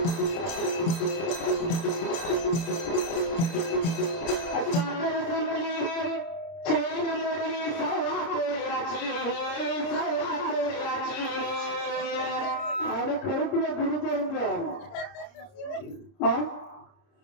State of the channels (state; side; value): late; right; 30 ms